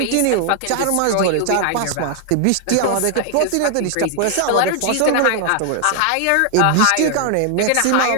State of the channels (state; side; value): different; both; correlation 0.00